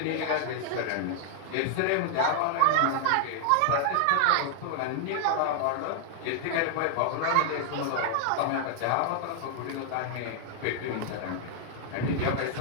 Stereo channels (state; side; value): different; both; correlation -0.01